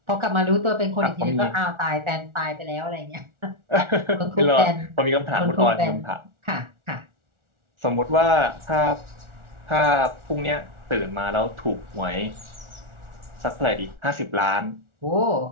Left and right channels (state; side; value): late; left; 1.4 ms